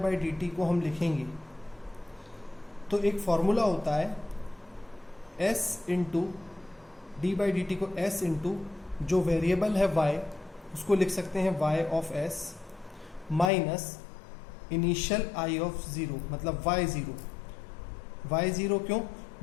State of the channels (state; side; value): drops out; right; at 13.5 s